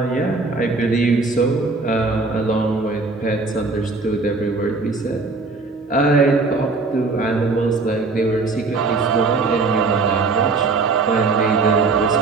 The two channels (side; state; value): left; quieter; 3.9 dB